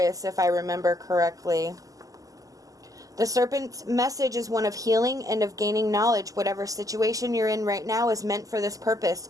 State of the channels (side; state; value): left; late; 0.17 ms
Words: if I remember correctly. The Serpent's message is one of healing and of gaining knowledge. Whatever situation you're in right now is meant for this purpose.